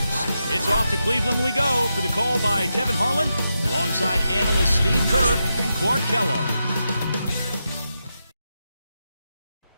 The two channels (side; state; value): both; inverted; correlation -0.87